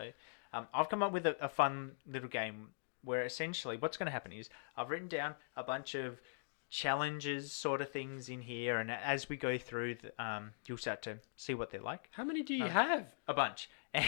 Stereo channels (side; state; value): right; silent; digital silence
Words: I've come up with a fun little game where essentially what's going to happen is I've written down a bunch of challenges sort of things in here, and as we go through you'll start to see what they're like. How many do you have? A bunch.